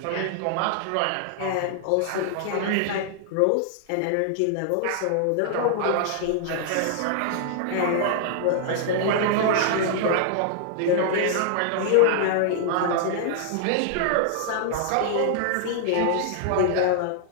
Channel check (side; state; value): both; different; correlation -0.01